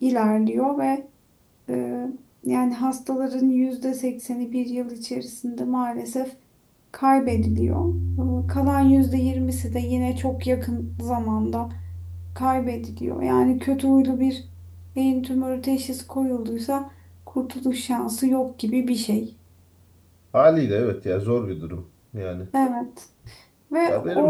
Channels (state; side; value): identical; both; correlation 1.00